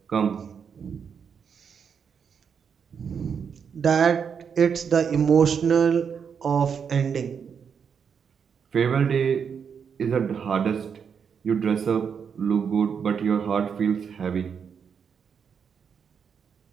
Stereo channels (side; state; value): left; quieter; 6.9 dB